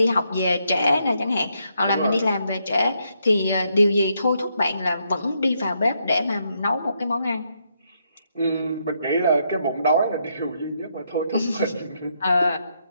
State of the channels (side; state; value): both; inverted; correlation -0.77